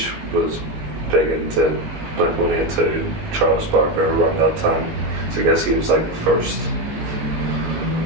was big into Blink-182, Travis Barker around that time. So I guess he was like the first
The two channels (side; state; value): left; late; 19 ms